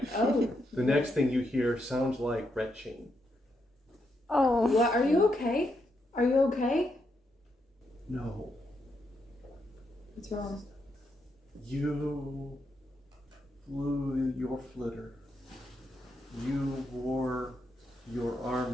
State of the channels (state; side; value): normal; both; correlation 0.81